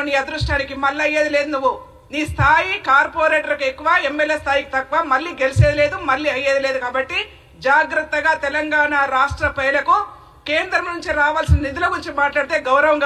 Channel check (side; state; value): both; identical; correlation 1.00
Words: నీ అదృష్టానికి మళ్ళీ అయ్యేది లేదు. నువ్వు నీ స్థాయి కార్పొరేటర్కి ఎక్కువ, ఎమ్మెల్యే స్థాయికి తక్కువ, మళ్ళీ గెలిచేది లేదు, మళ్ళీ అయ్యేది లేదు. కాబట్టి జాగ్రత్తగా తెలంగాణ రాష్ట్ర ప్రజలకు కేంద్రం నుంచి రావాల్సిన నిధుల గురించి మాట్లాడితే